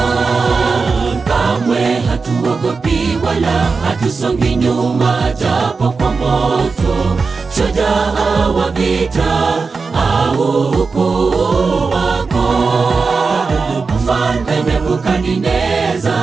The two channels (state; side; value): quieter; left; 4.6 dB